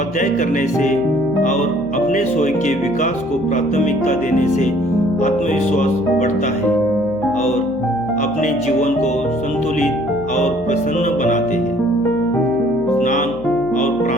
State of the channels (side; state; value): left; noise; hum, 18 dB below the sound